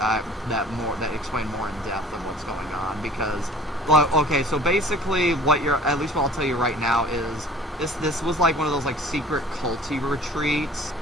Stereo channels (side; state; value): both; normal; correlation 0.47